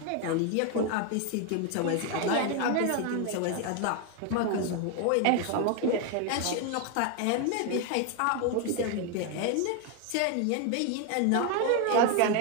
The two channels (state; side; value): different; both; correlation 0.01